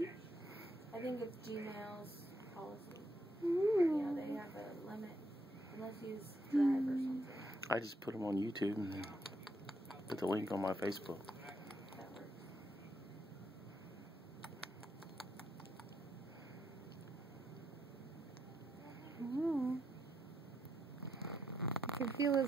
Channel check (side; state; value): both; normal; correlation 0.78